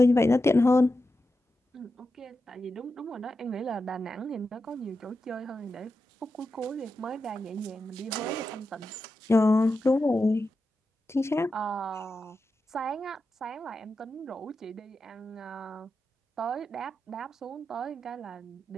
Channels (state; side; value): normal; both; correlation 0.90